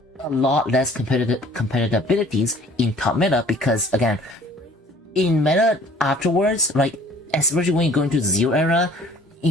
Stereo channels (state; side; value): normal; both; correlation 0.52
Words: a lot less competitive abilities in top meta, because again, in meta afterwards, like, especially when you go into Zero era,